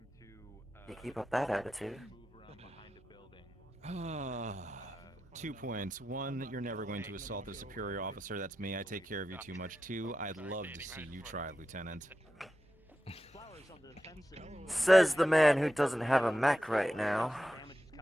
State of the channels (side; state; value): both; normal; correlation 0.91